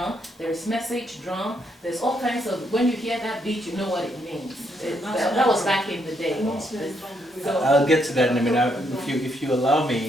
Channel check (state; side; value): normal; both; correlation 0.75